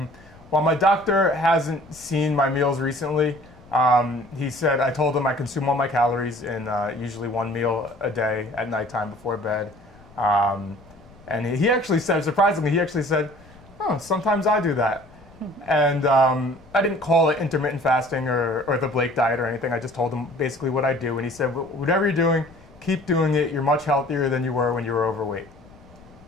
Well, my doctor hasn't seen my meals recently. He said, I told him I consume all my calories in usually one meal a day at nighttime before bed. And he actually said, surprisingly, oh, sometimes I do that. And I didn't call it intermittent fasting or the Blake diet or anything. I just told him basically what I do. And he said, whatever you're doing, keep doing it. You're much healthier than you were when you were overweight.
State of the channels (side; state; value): left; noise; rumble, 24 dB below the sound